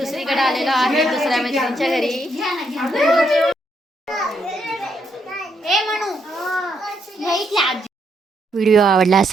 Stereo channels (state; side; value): normal; both; correlation 0.76